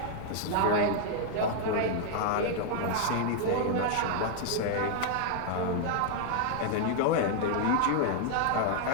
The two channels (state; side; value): different; both; correlation 0.00